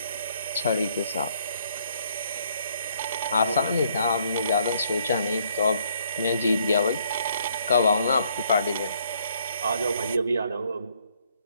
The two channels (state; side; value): inverted; both; correlation -0.67